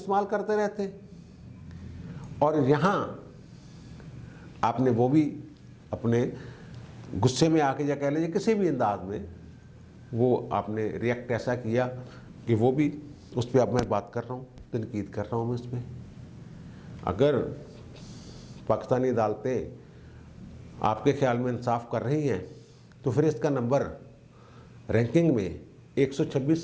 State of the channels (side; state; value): both; identical; correlation 1.00